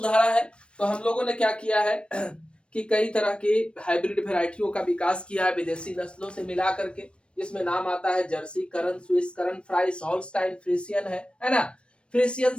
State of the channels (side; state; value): right; late; 0.058 ms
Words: है, तो हम लोगों ने क्या किया है कि कई तरह की हाइब्रिड वेराइटियों का विकास किया है विदेशी नस्लों से मिला करके। इसमें नाम आता है जर्सी, करन, स्विस, करन फ्राइस, हॉल्स्टाइन फ्रीसियन है ना। फ्रीसियन